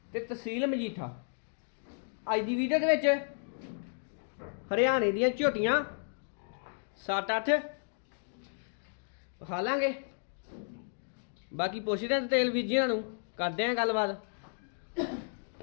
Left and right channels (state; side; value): silent; right; digital silence